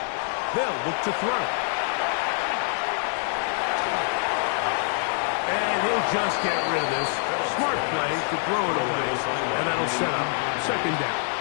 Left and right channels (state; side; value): silent; right; 61 dB below the other